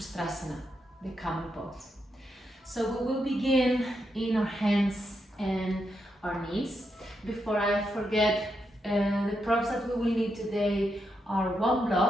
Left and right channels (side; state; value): both; normal; correlation 0.83